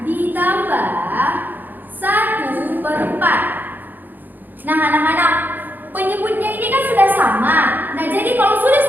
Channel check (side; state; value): left; late; 0.087 ms